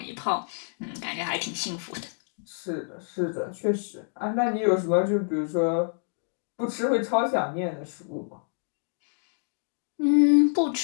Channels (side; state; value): right; silent; digital silence